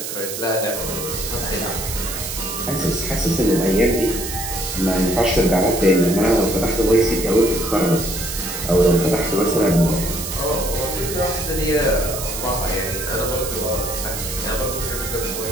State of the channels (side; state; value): right; noise; hiss, 6 dB below the sound